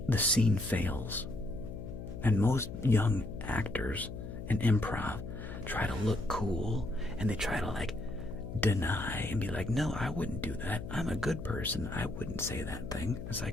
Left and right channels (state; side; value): noise; left; hum, 9 dB below the sound